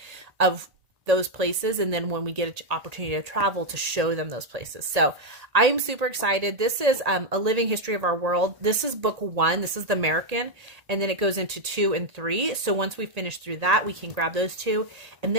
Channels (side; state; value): left; late; 1.8 ms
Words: of those places, and then when we get an opportunity to travel, to show them those places. So I'm super excited. This is A Living History of Our World. This is book 1. This is the American, and then it goes into 2 and 3. So once we finish through that, we can grab those 2, and